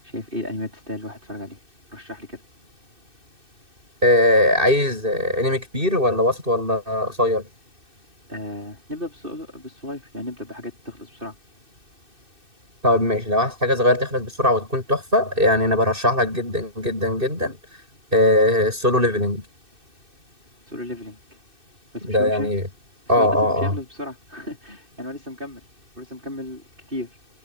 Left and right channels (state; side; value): late; left; 2.6 ms